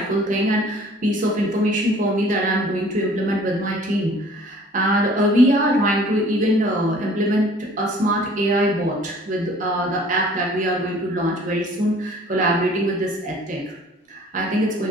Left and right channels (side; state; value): both; normal; correlation 0.52